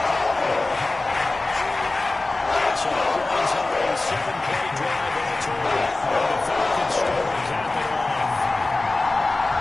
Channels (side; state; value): right; quieter; 3.1 dB